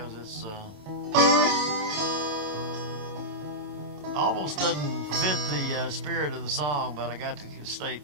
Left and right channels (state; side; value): late; left; 27 ms